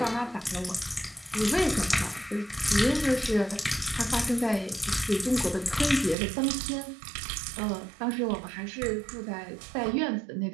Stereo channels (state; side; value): drops out; left; at 6.2 s